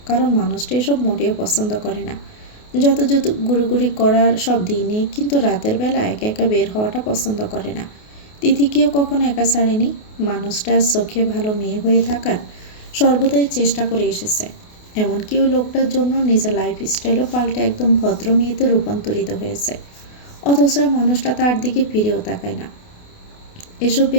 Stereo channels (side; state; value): right; late; 28 ms